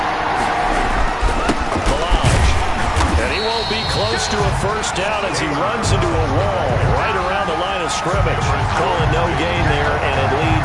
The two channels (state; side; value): identical; both; correlation 1.00